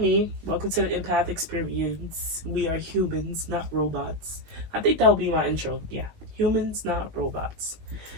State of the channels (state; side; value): late; left; 19 ms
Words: Welcome to the Empath Experience. We are humans, not robots. I think that will be my intro. Yeah, humans, not robots.